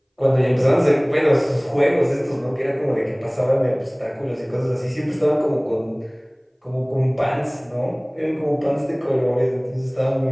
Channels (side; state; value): both; identical; correlation 1.00